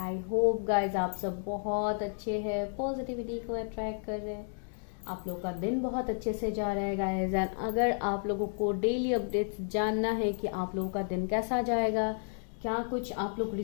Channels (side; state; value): right; silent; 56 dB below the other